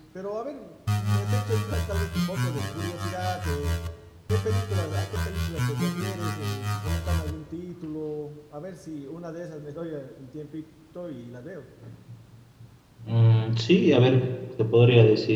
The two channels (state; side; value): identical; both; correlation 1.00